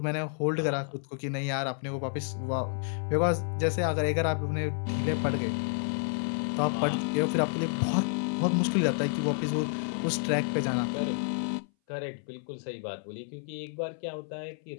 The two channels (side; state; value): right; silent; 58 dB below the other